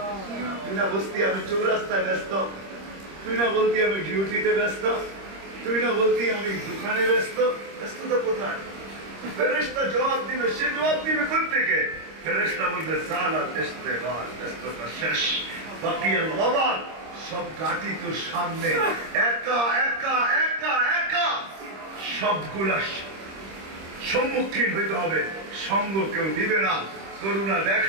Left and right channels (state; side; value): late; left; 26 ms